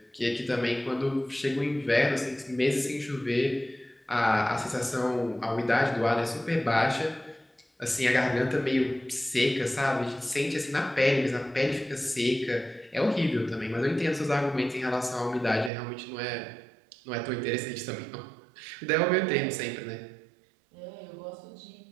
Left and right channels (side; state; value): left; drops out; at 15.7 s